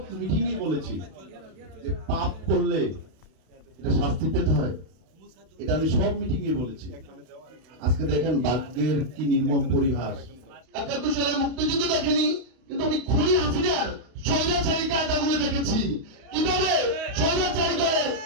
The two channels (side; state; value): left; late; 32 ms